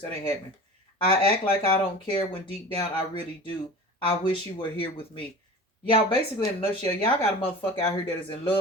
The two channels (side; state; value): both; normal; correlation 0.36